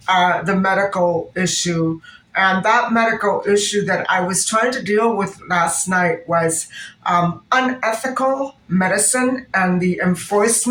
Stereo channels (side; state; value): both; identical; correlation 1.00